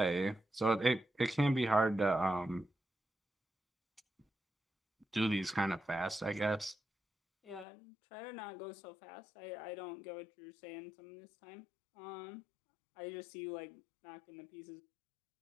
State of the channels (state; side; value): drops out; right; at 7.7 s